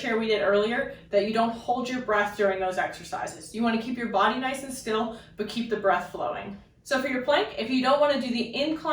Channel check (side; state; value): both; identical; correlation 1.00